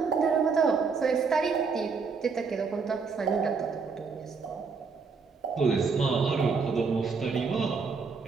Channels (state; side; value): quieter; left; 5.1 dB